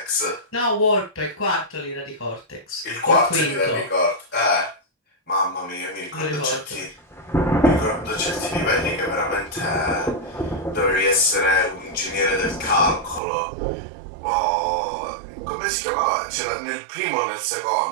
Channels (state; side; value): drops out; left; at 13.2 s